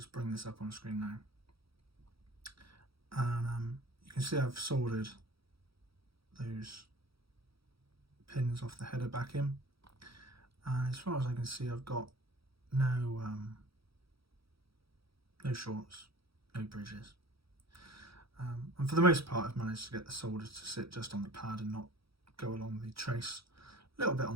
bring this up on screen now. And you can see I've soldered those pins off the header back in. And as far as I can see, I've got no shorts, no bridges. And for the most part, I've managed to get the solder to sit just on the pad and not go along the trace. A little bit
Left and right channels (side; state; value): left; late; 0.76 ms